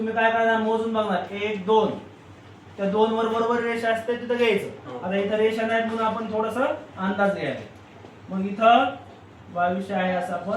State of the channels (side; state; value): both; identical; correlation 1.00